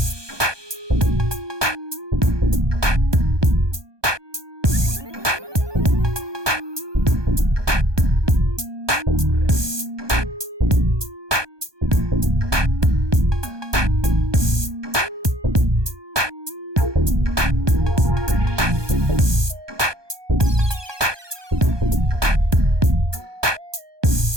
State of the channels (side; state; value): left; late; 1.2 ms